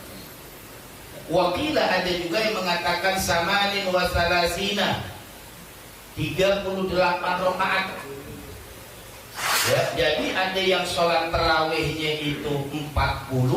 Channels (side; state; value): both; identical; correlation 1.00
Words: Wakila ada juga yang mengatakan samanin wa salasina, 38 rakaat. Ya, jadi ada yang sholat tarawihnya itu